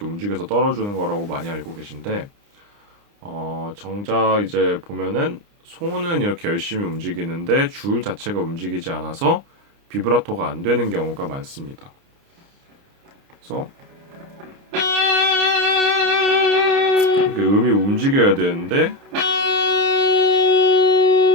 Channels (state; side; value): late; left; 29 ms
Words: 움직여서 떨어주는 거라고 많이 알고 계신데 정작 이제 보면은 손은 이렇게 열심히 움직이는데 줄 자체가 움직이지 않아서 비브라토가 안 되는 경우가 많습니다. 그래서 이렇게 음이 움직여야 되는데